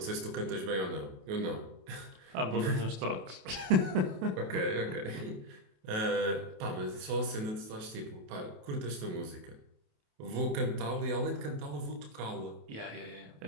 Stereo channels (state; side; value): late; left; 28 ms